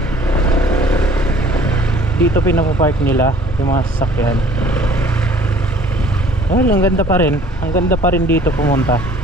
Dito pinapapark nila yung mga sasakyan. Well, ang ganda pa rin. Ang ganda pa rin dito pumunta.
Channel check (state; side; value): normal; both; correlation 0.54